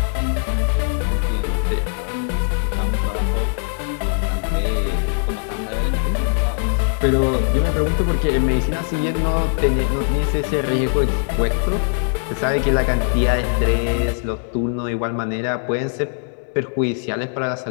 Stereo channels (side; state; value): right; silent; 65 dB below the other